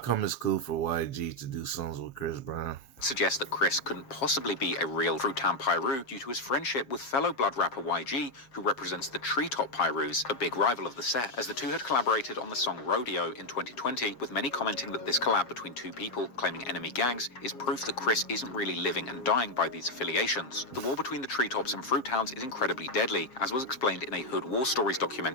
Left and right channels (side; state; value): right; late; 7.5 ms